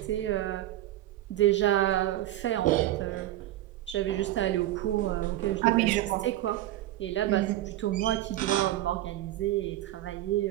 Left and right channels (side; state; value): left; quieter; 14.6 dB